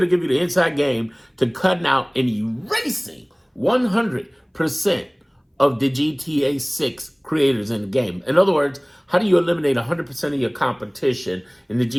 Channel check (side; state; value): both; identical; correlation 1.00